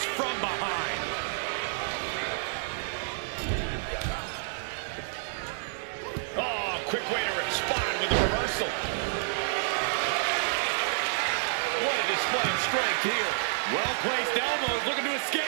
from behind. Oh, quick way to respond with the reversal. What a display of strength here. Well-placed elbows looking to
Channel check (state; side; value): silent; left; digital silence